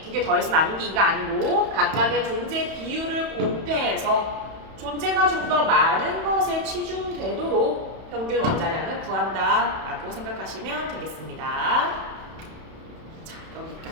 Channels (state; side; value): late; left; 31 ms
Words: 두 개 더해서 나누기가 아니고 각각의 존재 비율을 곱해서 존재가 좀 더 많은 것에 치중되도록 평균 원자량을 구한다라고 생각하시면 되겠습니다. 자,